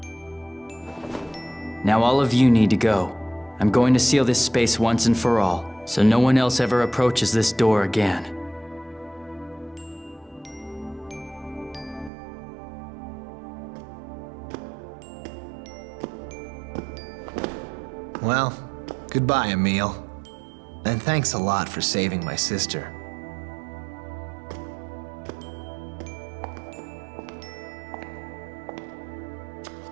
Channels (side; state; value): left; drops out; at 12.1 s